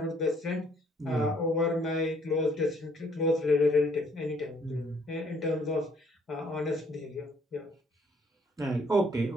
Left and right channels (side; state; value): both; normal; correlation 0.64